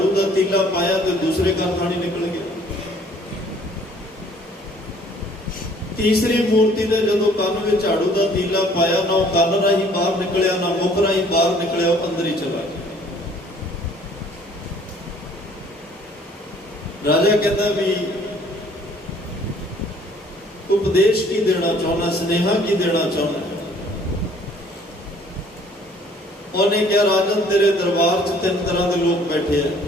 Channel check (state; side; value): normal; both; correlation 0.57